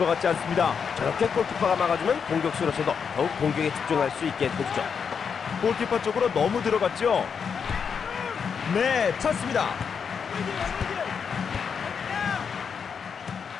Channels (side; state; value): right; quieter; 6.5 dB